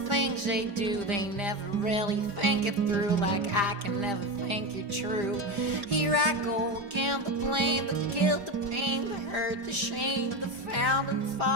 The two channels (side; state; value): left; late; 5.0 ms